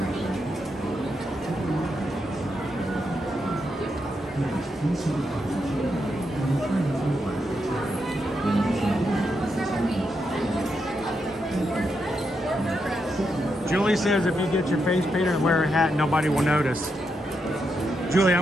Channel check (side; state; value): both; normal; correlation 0.83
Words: Julie says if you get your face painted and wear a hat, nobody will notice. Julie, I'm